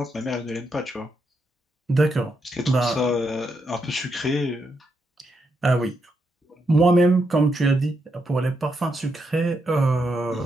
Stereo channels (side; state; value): both; normal; correlation 0.81